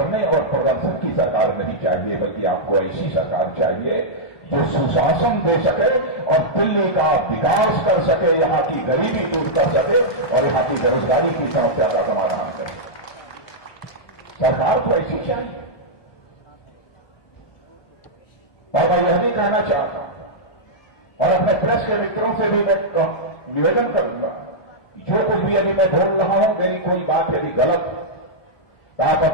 और प्रदर्शन की सरकार नहीं चाहिए, बल्कि आपको ऐसी सरकार चाहिए जो सुशासन दे सके और दिल्ली का विकास कर सके, यहां की गरीबी दूर कर सके और यहां की बेरोजगारी की समस्या का समाधान करे। सरकार को ऐसी चाहिए। और मैं यह भी कहना चाहता हूं और अपने प्रेस के मित्रों से भी मैं निवेदन करूंगा, जो कुछ भी यदि मैं बोल रहा हूं, मेरी कोई बात यदि गलत है तो आप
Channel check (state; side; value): late; right; 1.2 ms